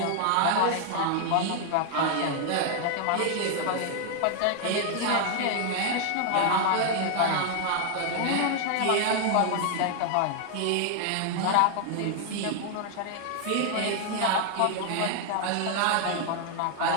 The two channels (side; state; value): both; different; correlation 0.00